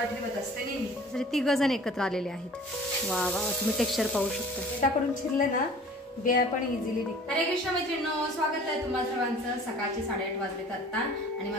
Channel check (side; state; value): both; normal; correlation 0.47